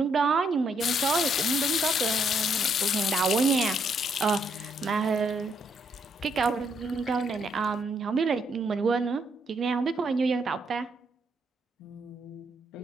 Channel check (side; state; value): both; normal; correlation 0.73